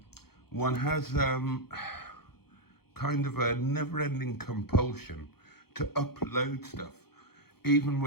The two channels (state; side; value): late; right; 0.96 ms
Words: one has kind of a never-ending compulsion to upload stuff, even